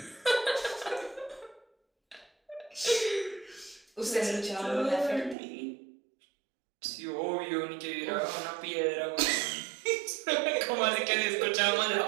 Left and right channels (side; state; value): left; drops out; at 5.4 s